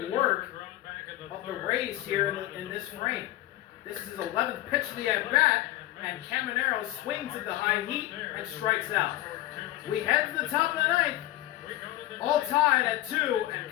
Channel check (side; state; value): right; quieter; 15.8 dB